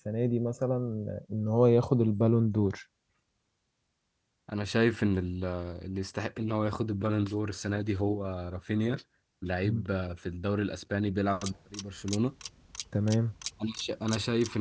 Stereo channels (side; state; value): both; identical; correlation 1.00